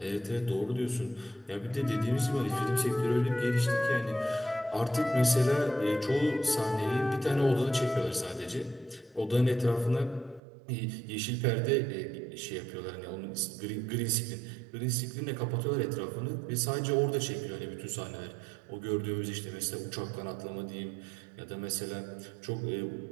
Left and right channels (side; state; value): left; drops out; at 10.4 s